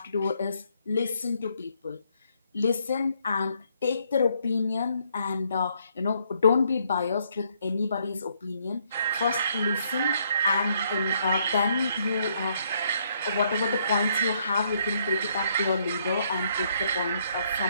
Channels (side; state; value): both; inverted; correlation -0.71